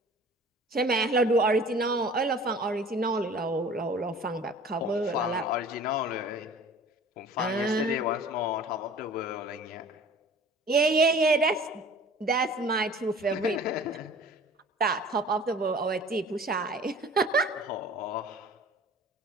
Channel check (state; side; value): normal; both; correlation 0.46